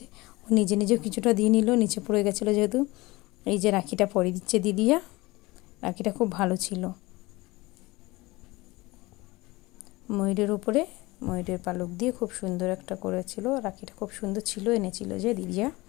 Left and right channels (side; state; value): right; quieter; 21.6 dB